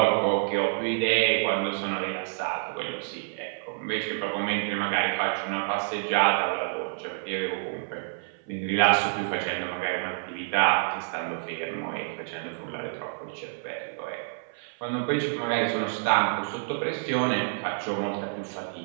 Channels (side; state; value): left; silent; 57 dB below the other